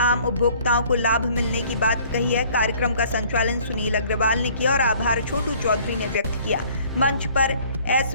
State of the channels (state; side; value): inverted; both; correlation -0.55